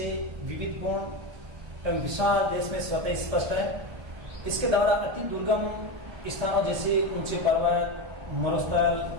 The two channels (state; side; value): late; left; 1.3 ms